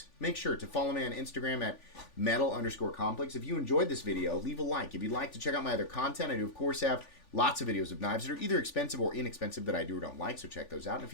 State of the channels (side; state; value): right; late; 3.5 ms